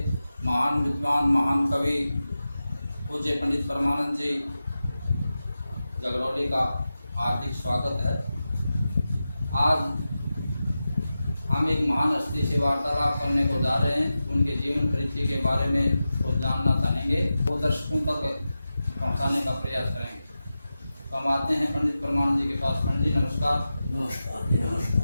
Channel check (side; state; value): both; inverted; correlation -0.93